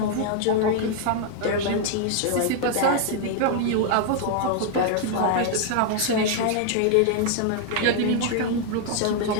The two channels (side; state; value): both; different; correlation 0.00